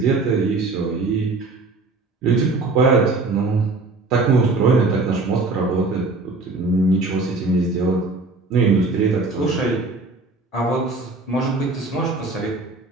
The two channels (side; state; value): left; quieter; 3.5 dB